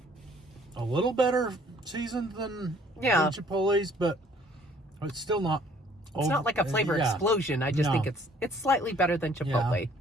a little better seasoned than Chipotle's, but it's still not. It's not like a flavor explosion. I just think it's slightly better than Chipotle.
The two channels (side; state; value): both; normal; correlation 0.59